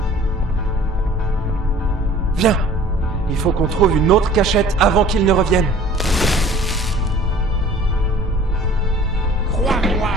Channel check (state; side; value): normal; both; correlation 0.49